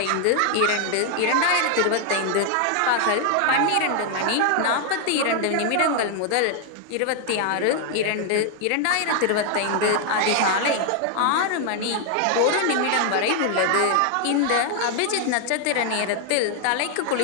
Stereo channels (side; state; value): both; different; correlation 0.00